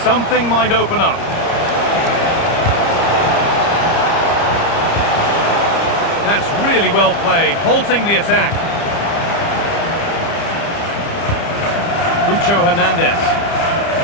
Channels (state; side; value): late; right; 30 ms